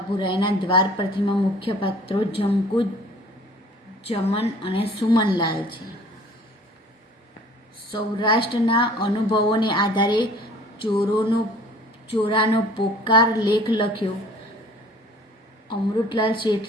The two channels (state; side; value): normal; both; correlation 0.50